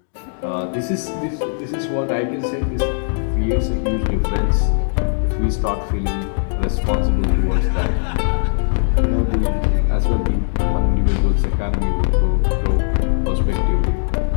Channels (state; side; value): silent; right; digital silence